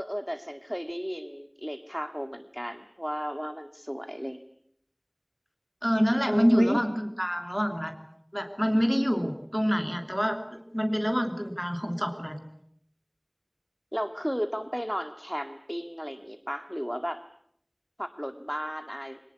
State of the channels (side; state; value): both; identical; correlation 1.00